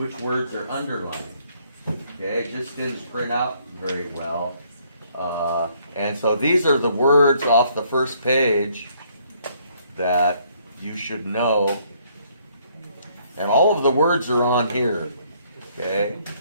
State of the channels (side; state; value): both; inverted; correlation -0.66